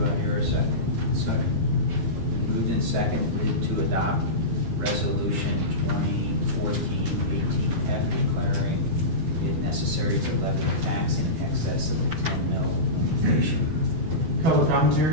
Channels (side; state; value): left; late; 12 ms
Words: I hear a second? Second. Moved and seconded to adopt Resolution 2014-18F declaring it necessary to levy a tax in excess of the 10 mil limitation. Public